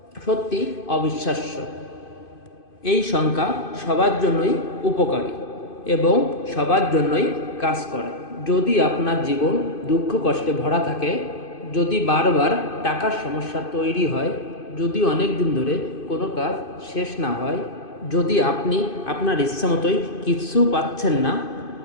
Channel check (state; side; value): late; right; 2.5 ms